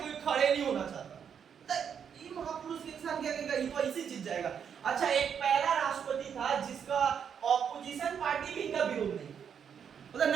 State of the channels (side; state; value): left; quieter; 7.6 dB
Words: खड़े नहीं होना चाहता। ये महापुरुष इंसान क्या कहेगा, ये तो ऐसी चीज जाएगा। अच्छा, एक पहला राष्ट्रपति था जिसका ऑपोजिशन पार्टी भी इनका विरोध नहीं, मतलब